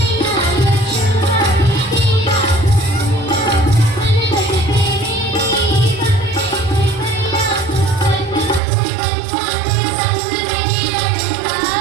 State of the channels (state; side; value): drops out; left; at 8.6 s